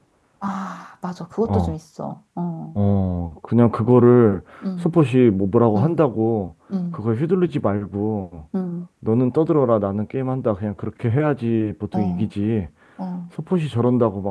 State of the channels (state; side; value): identical; both; correlation 1.00